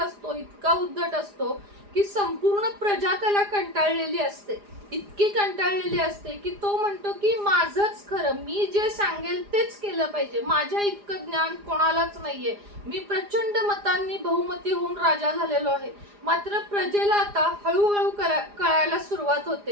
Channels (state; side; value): late; left; 4.9 ms